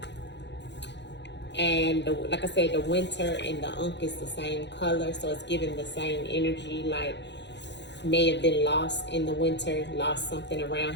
And like I said, the Winter and the Unk is the same color. So it's giving the same energy, like may have been lost in the Winter, lost something around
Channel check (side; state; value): right; late; 0.51 ms